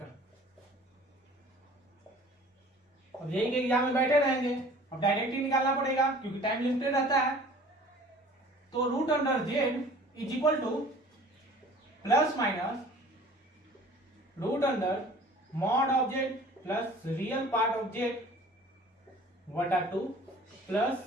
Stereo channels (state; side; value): normal; both; correlation 0.48